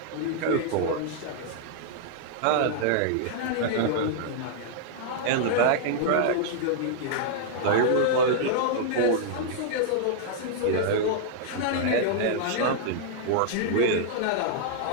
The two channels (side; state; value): both; different; correlation -0.01